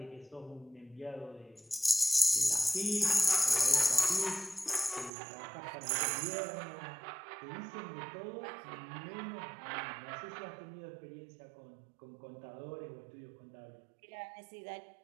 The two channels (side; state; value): left; drops out; at 5.1 s